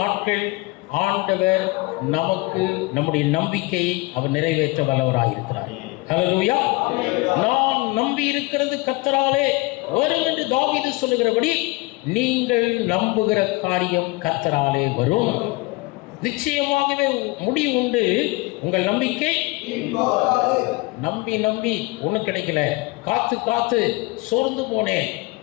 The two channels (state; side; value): quieter; right; 23.7 dB